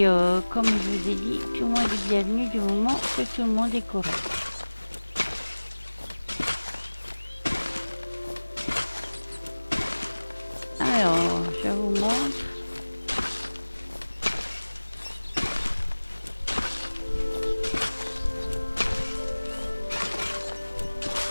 comme je vous ai dit, tout le monde est bienvenu du moment que tout le monde est correct. Alors, je vous montre.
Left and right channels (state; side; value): inverted; both; correlation -1.00